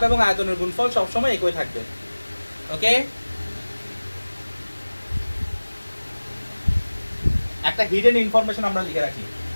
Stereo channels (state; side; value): inverted; both; correlation -1.00